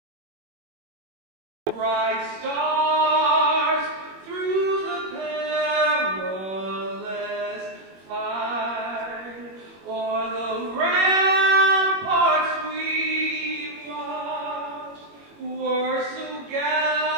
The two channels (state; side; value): late; left; 21 ms